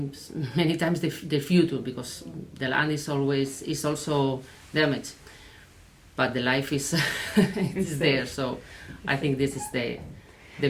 many times the future, because the land is also damaged, but the life is is there. So I think this is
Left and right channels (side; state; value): both; identical; correlation 1.00